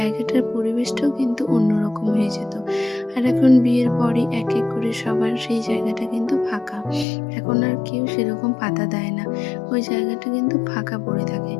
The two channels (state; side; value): drops out; right; at 7.1 s